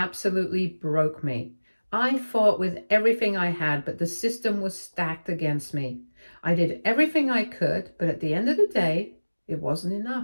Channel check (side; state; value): both; inverted; correlation -1.00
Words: broke me. I fought with everything I had, but the system was stacked against me. I did everything I could, but at the end of the day, it wasn't